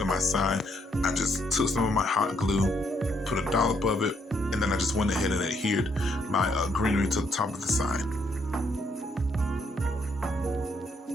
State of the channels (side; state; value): both; normal; correlation 0.72